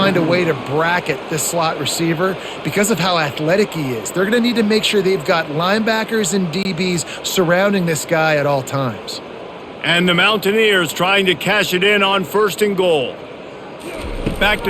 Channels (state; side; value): identical; both; correlation 1.00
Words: a way to bracket this slot receiver because of how athletic he is. They're going to need to make sure they've got linebackers and DBs surrounding this guy at all times. And the Mountaineers trying to cash it in on 1st and goal. Back